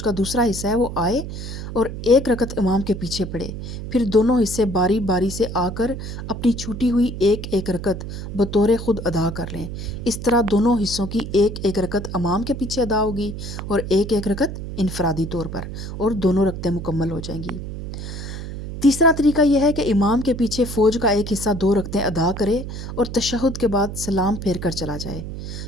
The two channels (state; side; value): noise; right; hum, 8 dB below the sound